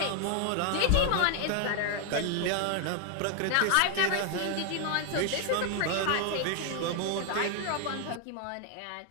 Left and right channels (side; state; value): both; different; correlation 0.01